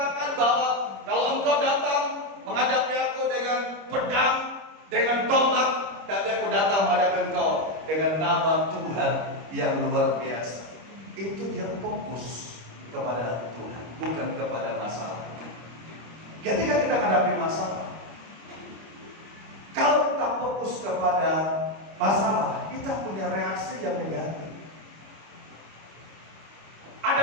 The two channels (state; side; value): late; left; 25 ms